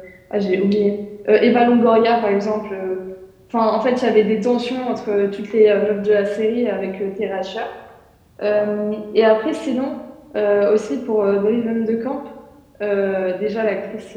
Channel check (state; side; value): identical; both; correlation 1.00